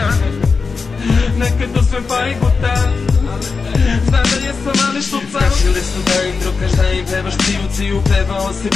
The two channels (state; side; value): quieter; right; 4.7 dB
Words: Nekad uzmem pa i gutam, znam da jesam ali štucam. Kašili su da im drugaš, da im pevaš ciju, pevao si